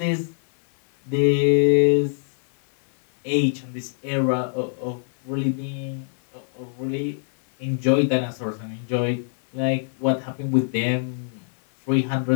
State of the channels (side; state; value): right; silent; 58 dB below the other